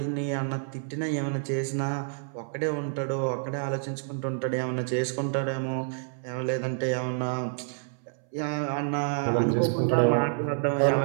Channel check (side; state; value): left; silent; 59 dB below the other